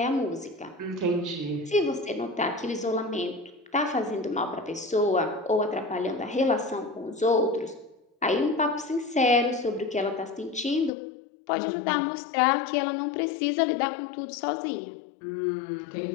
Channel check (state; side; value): drops out; right; at 10.9 s